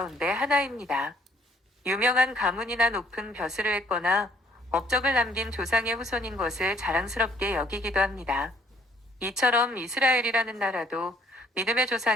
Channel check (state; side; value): normal; both; correlation 0.62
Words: 하나입니다. 유명한 가문이나 높은 벼슬을 했거나 업적을 남긴 조상의 후손인 것을 자랑스럽게 여기기도 합니다. 이처럼 이스라엘이라는 나라도 믿음의